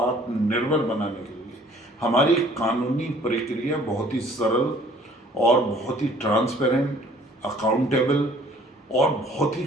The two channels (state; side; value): normal; both; correlation 0.55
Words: बनाने के लिए हमारी कानूनी प्रक्रिया बहुत ही सरल और बहुत ही ट्रांसपेरेंट, अकाउंटेबल और बहुत ही